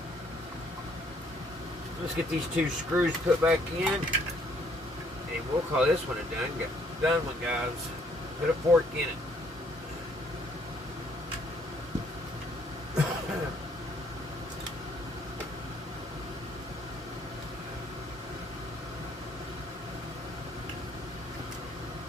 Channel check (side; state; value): both; normal; correlation 0.65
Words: Let's get these 2 screws put back in, and we'll call this one a done one, guys. Put a fork in it.